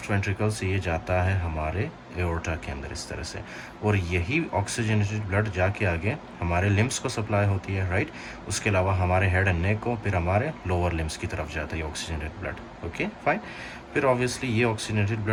वेंट्रिकल से ये जाता है हमारे एओर्टा के अंदर इस तरह से. और यही ऑक्सीजनेटेड ब्लड जाके आगे हमारे लिम्स को सप्लाई होती है. राइट, उसके अलावा हमारे हेड एंड नेक को, फिर हमारे लोअर लिम्स की तरफ जाता है ये ऑक्सीजनेटेड ब्लड. Okay fine. फिर ऑब्वियसली ये ऑक्सीजनेटेड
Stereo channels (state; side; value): identical; both; correlation 1.00